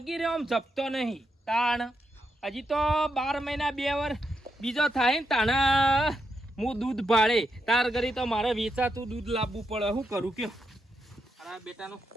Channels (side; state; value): both; normal; correlation 0.83